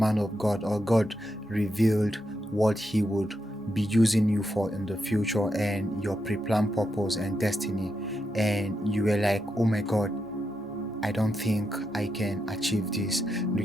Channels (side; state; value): both; normal; correlation 0.84